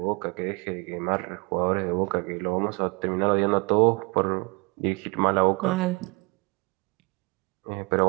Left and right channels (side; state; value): left; quieter; 29.0 dB